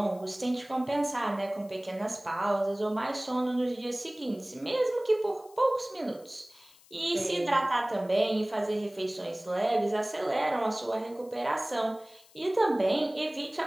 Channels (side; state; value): left; noise; hiss, 26 dB below the sound